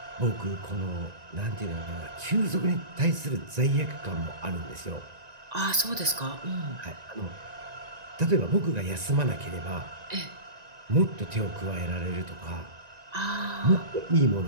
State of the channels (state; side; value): late; left; 1.9 ms